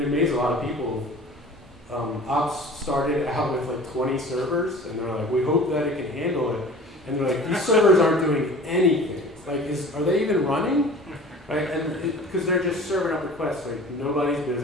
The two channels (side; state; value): both; normal; correlation 0.43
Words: it amazed a lot of people. Ops started out with like 20 servers, and they're like, we hope that it can handle it. And they're like, these servers aren't doing anything. Like, are they even running? Right? And because they're just serving up requests, like nobody's